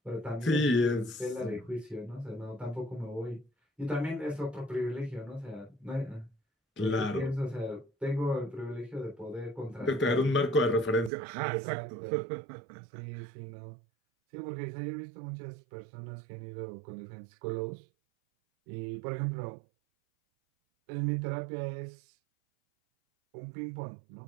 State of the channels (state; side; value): drops out; left; at 11.1 s